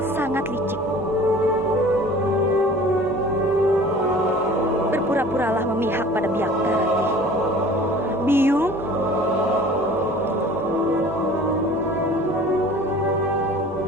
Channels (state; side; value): normal; both; correlation 0.46